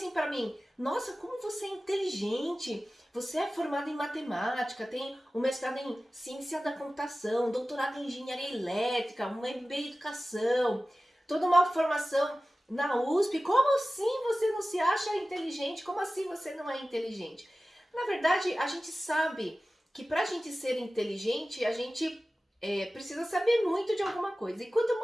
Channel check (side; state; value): both; normal; correlation 0.96